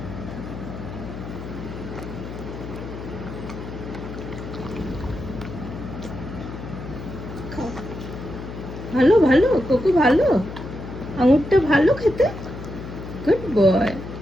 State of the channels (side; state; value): left; noise; hum, 10 dB below the sound